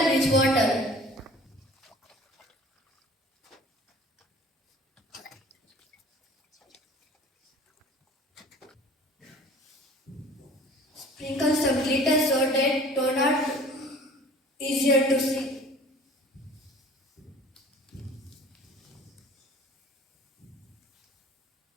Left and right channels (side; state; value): both; normal; correlation 0.47